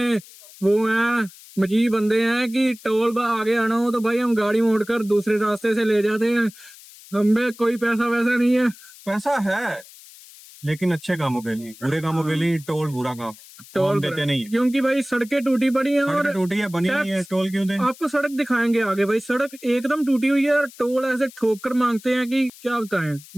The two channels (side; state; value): left; noise; hiss, 21 dB below the sound